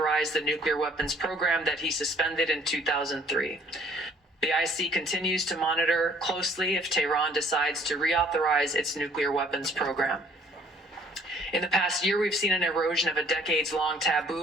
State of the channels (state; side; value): normal; both; correlation 0.59